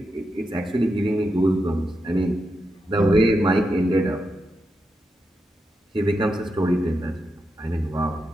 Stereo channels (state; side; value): normal; both; correlation 0.86